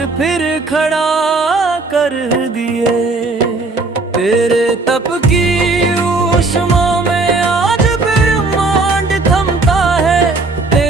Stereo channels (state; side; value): quieter; left; 3.5 dB